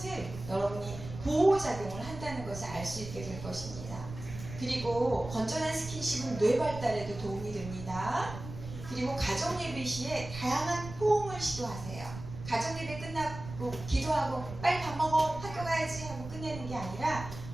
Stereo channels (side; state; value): right; noise; rumble, 11 dB below the sound